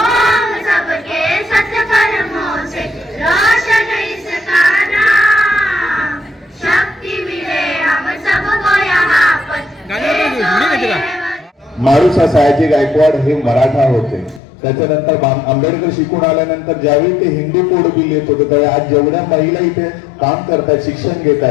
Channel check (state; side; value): drops out; right; at 14.4 s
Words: सबके सत्कर्मों से रोशन इसका नाम. शक्ति मिले हम सबको यहाँ पर. मारुसा सयाजी गायकवाड हे मराठा होते. त्याच्यानंतर आंबेडकर शिकून आल्यानंतर ज्यावेळी ते हिंदू कोड बिल येत होतं त्यावेळी आज जेवढ्या महिला इथे काम करतात, शिक्षण